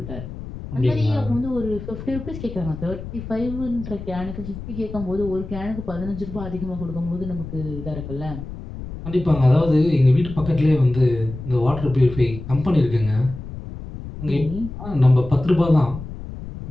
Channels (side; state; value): left; noise; rumble, 10 dB below the sound